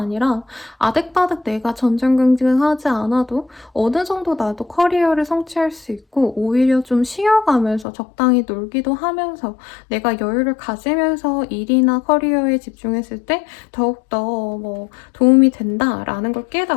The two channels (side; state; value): right; drops out; at 7.9 s